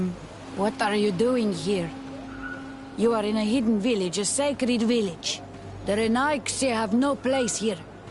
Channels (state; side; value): identical; both; correlation 1.00